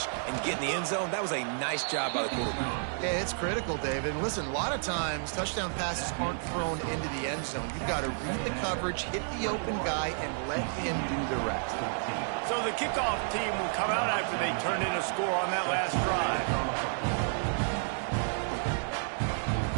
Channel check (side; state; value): left; silent; 57 dB below the other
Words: and get in the end zone, that was a nice job by the quarterback. Yeah, it's critical, David. And listen, a lot of times touchdown passes aren't thrown into the end zone. You've got to read the coverage, hit the open guy, and let him do the rest. So the kickoff team will come out after they turn in a score on that last drive.